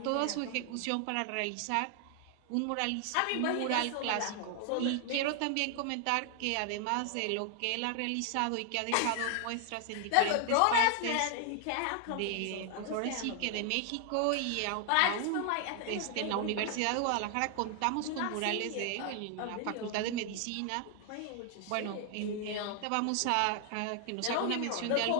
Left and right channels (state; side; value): different; both; correlation 0.00